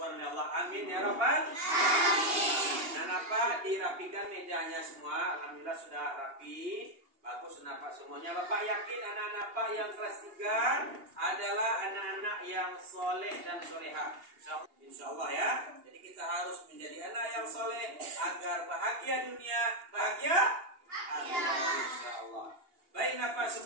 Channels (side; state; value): left; late; 2.8 ms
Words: oleh Allah. Amin ya Rabbal. Nah, Bapak dirapikan mejanya semua. Alhamdulillah sudah rapi. Bagus Bapak semuanya. Bapak yakin anak-anak Bapak yang kelas 3 adalah anak-anak yang soleh dan soleha. Insya Allah ya. Jadi kita harus menjadi anak yang soleh agar bahagia dunia, bahagia akhirat. Insya Allah. Baik Bapak